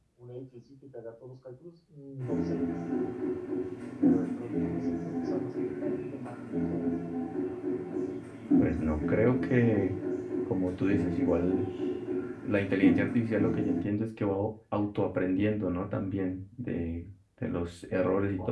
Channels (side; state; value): both; identical; correlation 1.00